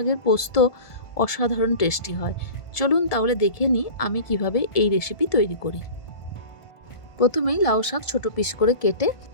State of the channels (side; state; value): right; late; 1.5 ms